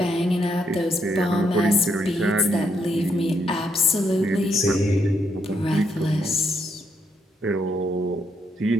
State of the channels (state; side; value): normal; both; correlation 0.76